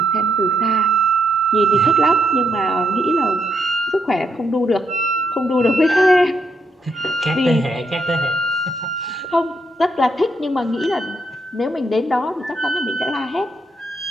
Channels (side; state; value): both; normal; correlation 0.77